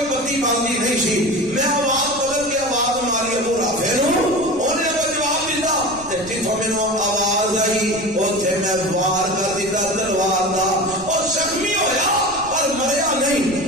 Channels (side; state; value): right; noise; rumble, 18 dB below the sound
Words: بتی باندھی نہیں سی میں آواز بدل کے آواز ماری ابو رافع انہیں جواب دیتا جتوں میرے آواز آئی اتنے میں وار کر دیتا تلوار کا اور زخمی ہویا پر مریا نہیں